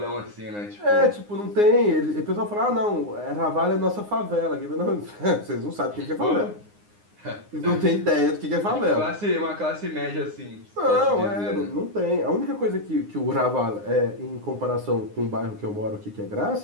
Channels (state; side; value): late; left; 9.7 ms